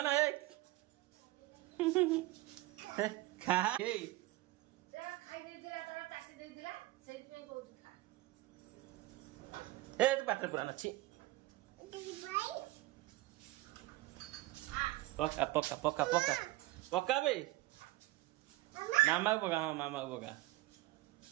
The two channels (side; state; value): left; quieter; 17.9 dB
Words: ए खा ए जा खाइ देतिला तारा चाटी देतिला सेति पे कहू खा ए तू पात्र पुराना छी पका बे मामा को पका मामा को पका